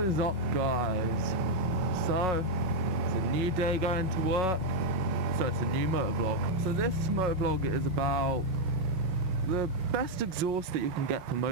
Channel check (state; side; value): late; left; 5.4 ms